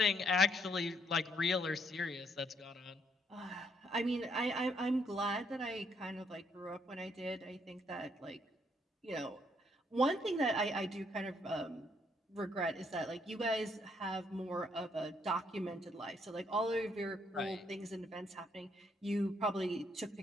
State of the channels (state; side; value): normal; both; correlation 0.72